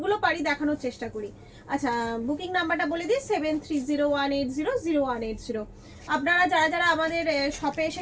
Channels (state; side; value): identical; both; correlation 1.00